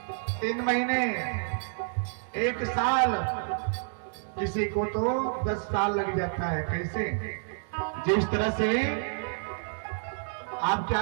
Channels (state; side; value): silent; left; 58 dB below the other